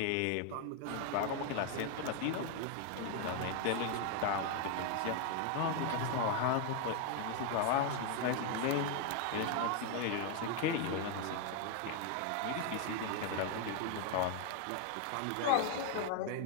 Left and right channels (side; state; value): both; different; correlation 0.01